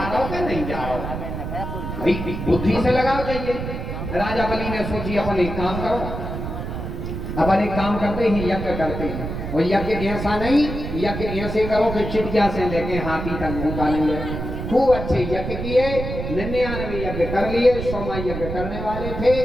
रहा हो कि नहीं जा रहा हो, भाई बुद्धि से लगाओ चाहिए। राजा बलि ने सोची अपन एक काम करो, अपन एक काम करते ही यज्ञ करते हैं, और यज्ञ ऐसा नहीं, यज्ञ ऐसे करो कि चिड़िया से लेके हाथी तक भूखा नहीं है, खूब अच्छे यज्ञ किए, 99 यज्ञ कर लिए, 100 यज्ञ करने वाले थे।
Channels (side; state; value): right; noise; rumble, 6 dB below the sound